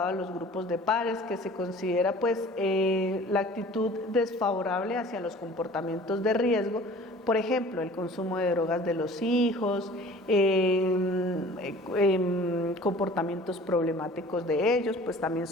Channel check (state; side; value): normal; both; correlation 0.46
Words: a los grupos de pares, que se considera pues la actitud desfavorable hacia los comportamientos de riesgo, por ejemplo, el consumo de drogas de los hijos, comportamientos problemáticos de ellos, pues también